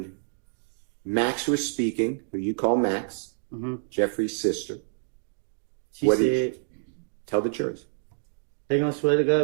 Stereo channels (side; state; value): left; silent; digital silence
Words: Max was speaking, who you call Max, Jeffrey's sister. She said, tell the jurors. They gonna swear to